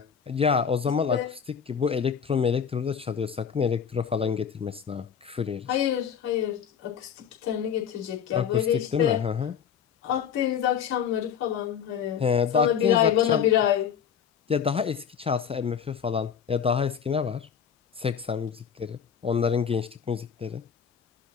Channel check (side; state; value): right; quieter; 7.6 dB